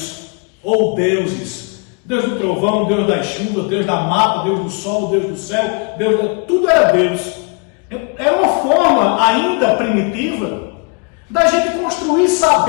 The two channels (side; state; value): right; quieter; 34.2 dB